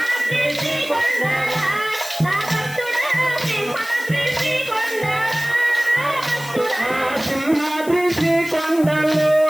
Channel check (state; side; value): noise; left; hiss, 16 dB below the sound